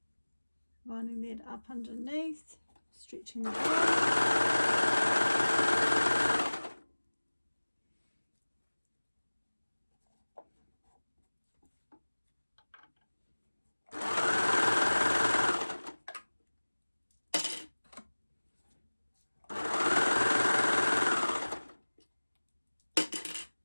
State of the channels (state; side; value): inverted; both; correlation -1.00